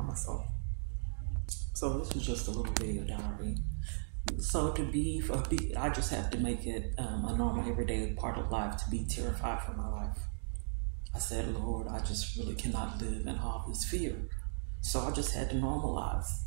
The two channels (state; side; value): silent; left; digital silence